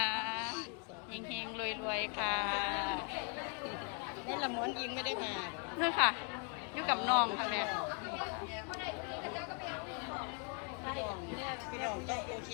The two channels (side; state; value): right; quieter; 36.8 dB